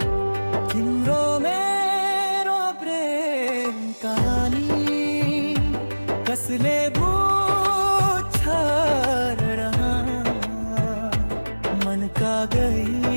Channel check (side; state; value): both; inverted; correlation -1.00